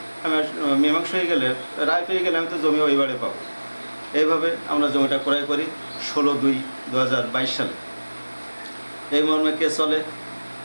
আমি মীমাংসা হয়ে গেলে, রায় পেয়ে গেলে আমি তো জমি ওইবারে পাবো। এইভাবে আমরা জমিটা ক্রয় করি ১৬/২/২০২২ সালে। এই মর্মে কেস চলে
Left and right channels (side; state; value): both; inverted; correlation -1.00